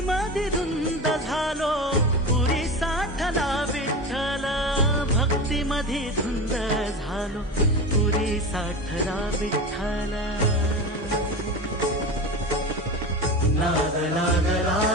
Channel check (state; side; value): normal; both; correlation 0.27